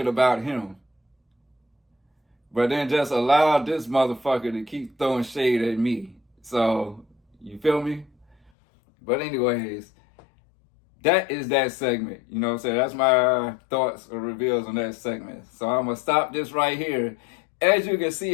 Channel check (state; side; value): drops out; right; at 8.5 s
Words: about him. But then just allowed this motherfucker to keep throwing shade at me. So, you feel me? But anyways, that is that segment. You know what I'm saying? That's my thoughts or reveals on that segment. So I'm going to stop this right here. As you can